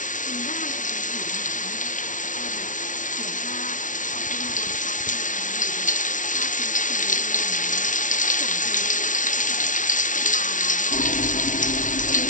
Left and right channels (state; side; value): late; right; 0.37 ms